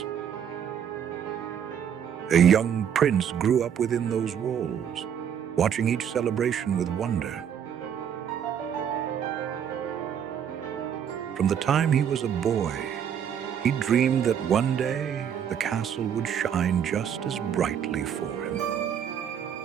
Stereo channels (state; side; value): quieter; left; 8.6 dB